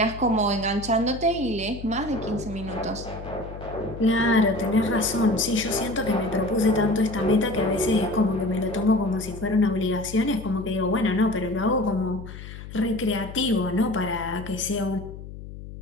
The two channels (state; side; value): noise; left; hum, 12 dB below the sound